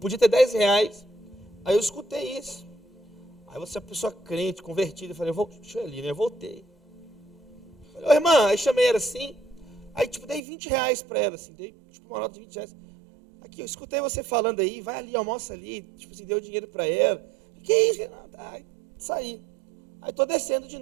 ter 10 reais. Aí eu escutei isso. Aí você é uma pessoa crente, convertida, eu falei: deixa eu ir ali, né? Eu voltei. Falei: ô irmã, aí chamei ela assim, aí tipo dei 20 reais para ela, assim, dei tipo uma nota de 20 reais. Aqui, eu escutei você falando aí, vai ali, almoça ali, tipo assim, deu dinheiro para ela. Que isso? Aí saí. Aí estou descendo de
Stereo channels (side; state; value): left; drops out; at 10.4 s